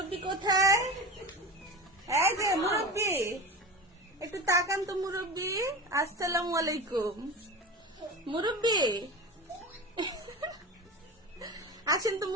কোথায়? এই যে মুরব্বি, একটু তাকান তো মুরব্বি। আসসালামু আলাইকুম মুরব্বি। আসেন তো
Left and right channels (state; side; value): normal; both; correlation 0.28